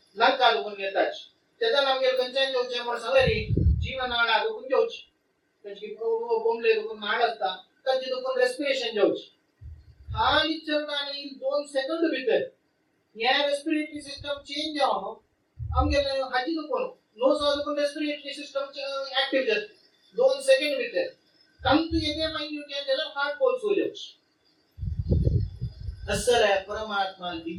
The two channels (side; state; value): both; identical; correlation 1.00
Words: नाका दुखून घेतात त्याचा आमगे कंचन जोचे म्हणून सांगरी जीवनाळा दुखून जोच कचकी बोंबले दुखून नाळ असता कच्ची दुखून रेस्पिरेशन जोच हाली चलनानी 2 सेकंद भितर या रेस्पिरेटरी सिस्टम चेंज जावनो आमगे हाजी दुखून नोज दुखून रेस्पिरेटरी सिस्टम ऍक्टिव्ह जाते 2 सेकंड भितर तंतु येते माइन्यूट या त्याला हार्ट पल्स होईल असर आहे परमात्मा